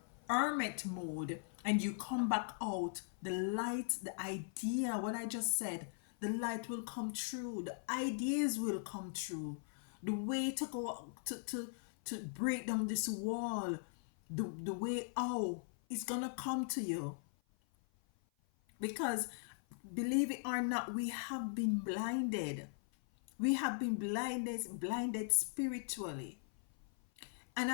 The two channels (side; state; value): right; silent; 51 dB below the other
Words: hermit mode and you come back out, the light, the idea, what I just said, the light will come true, the ideas will come true, the way to go to break down this wall, the way out is gonna come to you. Because believe it or not, we have been blinded. We have been blinded spiritually. And